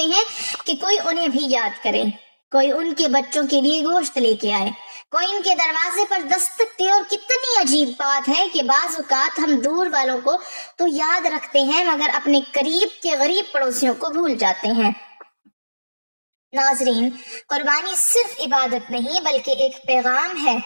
ہیں کہ کوئی انہیں بھی یاد کرے، کوئی ان کے بچوں کے لیے گوشت لے کے آئے، کوئی ان کے دروازے پر دستک دے۔ اور کتنی عجیب بات ہے کہ بعض اوقات ہم دور والوں کو تو یاد رکھتے ہیں مگر اپنے قریب کے غریب پڑوسیوں کو بھول جاتے ہیں۔ ناظرین، قربانی صرف عبادت نہیں بلکہ ایک پیغام ہے،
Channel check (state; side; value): inverted; both; correlation -1.00